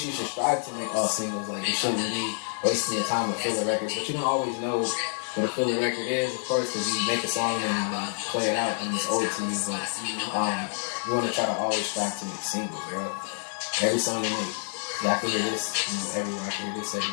you should strive to make all singles. Like you shouldn't be wasting your time with filler records, but you don't always know what a filler record is, of course, because you make a song and play it out and it's old to you. But you want to try to always strive to make singles, bro. Every song you make, I can hear this, everywhere. I can hear this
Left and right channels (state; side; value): silent; right; digital silence